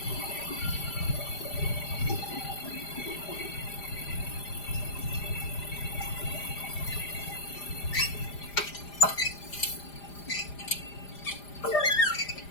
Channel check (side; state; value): right; late; 5.0 ms